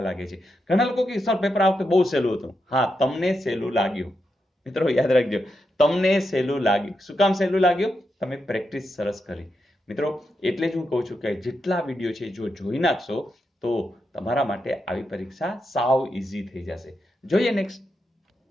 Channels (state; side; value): normal; both; correlation 0.85